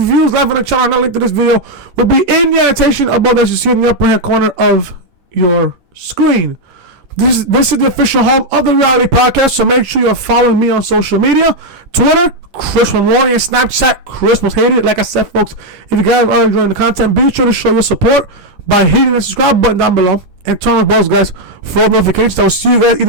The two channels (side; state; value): left; late; 11 ms